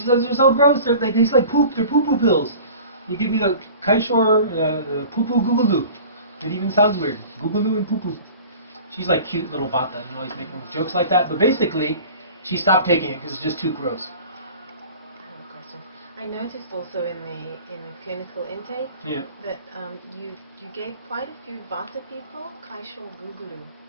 says they're so gross, they taste like poop, they're poo-poo pills. You give me the kaishor, the poo-poo googaloo. It even sounds weird. Googaloo and poo-poo. She's like cute little vata, always making jokes like that. But basically, she stopped taking it because it's just too gross. I have a question. I noticed also in the clinical intake that you gave quite a few vata people kaishor googaloo.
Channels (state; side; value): inverted; both; correlation -0.42